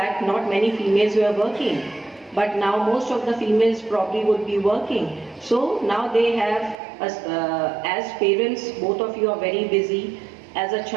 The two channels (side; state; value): left; drops out; at 6.8 s